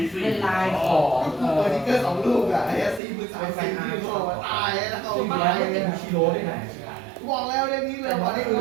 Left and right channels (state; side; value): drops out; left; at 3.0 s